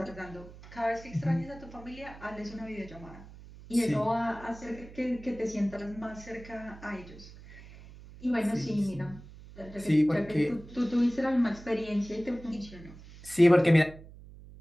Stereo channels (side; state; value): right; noise; hum, 18 dB below the sound